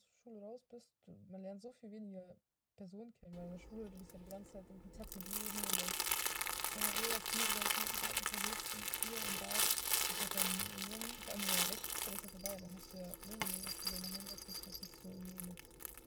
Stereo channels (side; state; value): both; identical; correlation 1.00